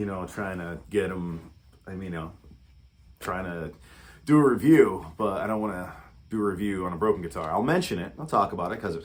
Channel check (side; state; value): both; identical; correlation 1.00